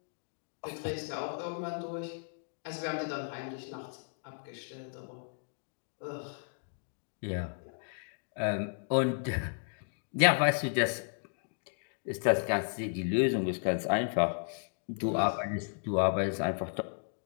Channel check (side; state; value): right; silent; digital silence